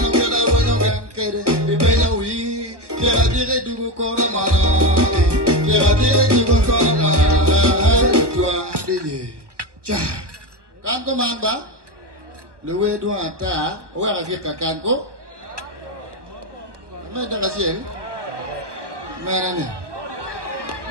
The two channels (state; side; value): late; left; 1.2 ms